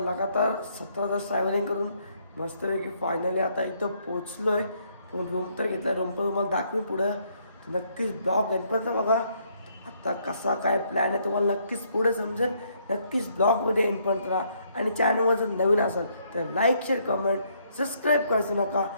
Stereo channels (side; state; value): both; inverted; correlation -0.70